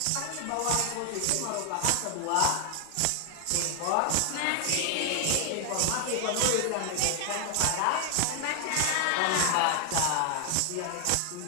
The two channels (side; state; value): both; different; correlation 0.00